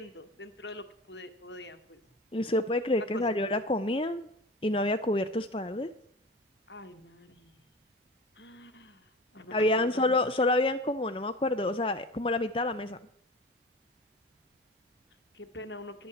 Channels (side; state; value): both; normal; correlation 0.35